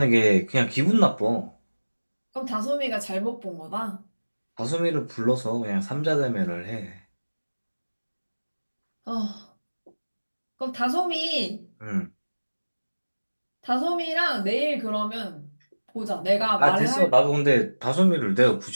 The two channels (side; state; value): both; inverted; correlation -1.00